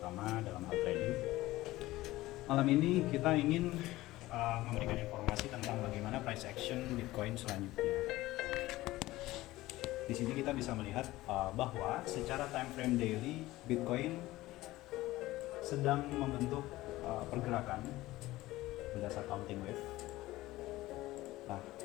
dalam hal trading. Malam ini kita ingin memberikan informasi tentang bagaimana price action Bitcoin selanjutnya. Di sini kita bisa melihat bahwa secara time frame daily Bitcoin sedang membentuk pergerakan berdasar counting wave. Nah,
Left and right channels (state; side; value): quieter; right; 17.6 dB